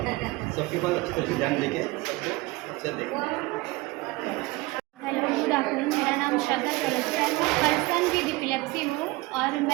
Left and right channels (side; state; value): left; quieter; 21.6 dB